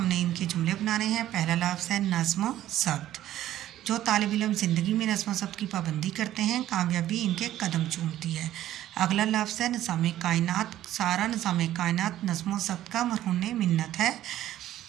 इनके जुमले बनाने हैं। पहला लफ्ज़ है नज़्म ज़ब्त। जो तालिब इल्म ज़िंदगी में नज़्म ज़ब्त की पाबंदी करते हैं, कामयाबी इनके कदम चूमती है। अगला लफ्ज़ है निज़ाम कायनात। सारा निज़ाम कायनात नज़्म ज़ब्त का मरहून मिन्नत है।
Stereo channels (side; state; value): left; quieter; 13.1 dB